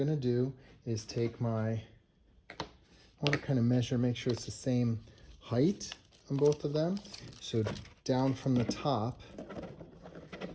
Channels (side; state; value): both; identical; correlation 1.00